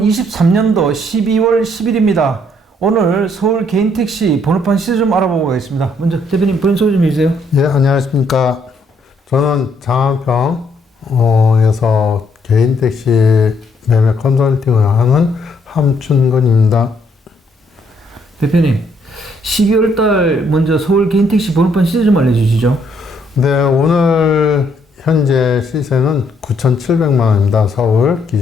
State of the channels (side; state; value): both; normal; correlation 0.70